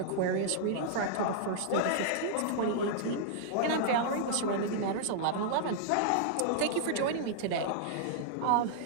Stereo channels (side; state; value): both; different; correlation -0.01